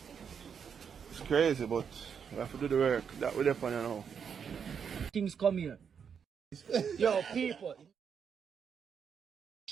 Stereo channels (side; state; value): left; quieter; 7.0 dB